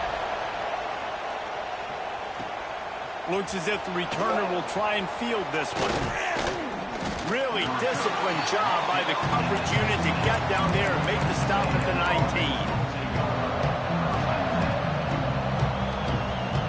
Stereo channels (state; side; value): identical; both; correlation 1.00